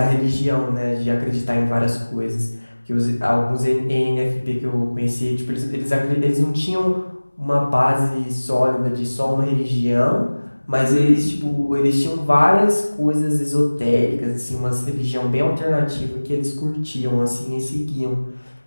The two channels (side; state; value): both; inverted; correlation -1.00